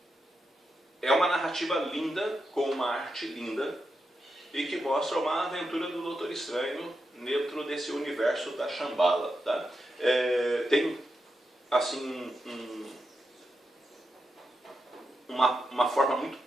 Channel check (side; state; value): both; normal; correlation 0.87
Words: é uma narrativa linda, com uma arte linda, e que mostra uma aventura do Doutor Estranho dentro desse universo da Shambhala. Tá? Tem assim uma forma muito